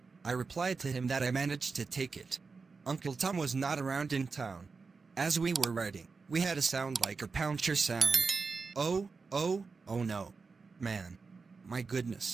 I replied to him that I managed to take it. Uncle Tom was not around in town. As we were riding, we had a sound like a puncture sound. Oh no. Man. My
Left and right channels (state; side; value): quieter; left; 4.6 dB